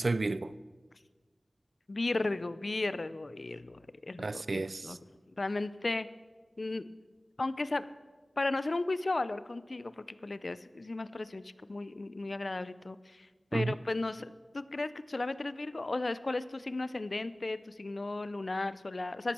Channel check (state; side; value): normal; both; correlation 0.97